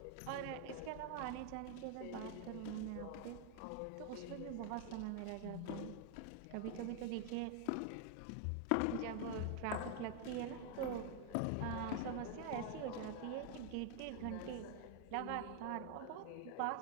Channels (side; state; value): both; different; correlation 0.00